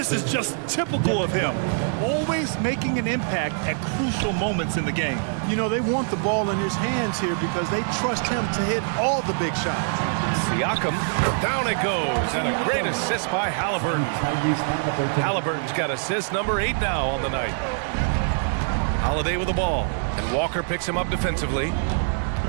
is just typical of him, always making an impact at crucial moments in the game. You know, they want the ball in his hands here because they trust him to hit all the big shots. Siakam, down it goes, and a great assist by Halliburton. Halliburton's got assist number 8 now on the night. Holiday with the ball, and Walker picks him up defensively.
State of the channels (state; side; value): silent; left; digital silence